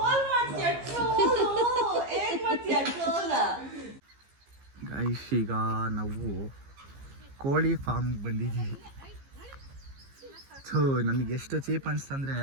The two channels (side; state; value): left; late; 15 ms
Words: ಗೈಸ್, ಈಗ ನಾವು ಕೋಳಿ ಫಾರ್ಮ್ಗೆ ಬಂದಿದ್ದೀವಿ. ಸೊ ನನಗೆ ಎಷ್ಟು ಚೀಪ್ ಅನಿಸ್ತಂದರೆ